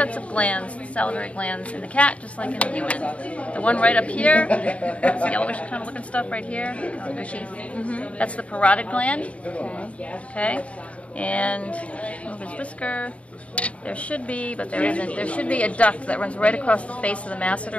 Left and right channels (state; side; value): late; right; 0.064 ms